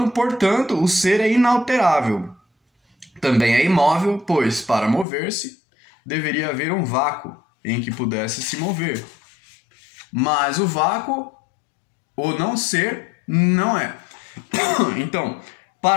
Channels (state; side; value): drops out; right; at 5.1 s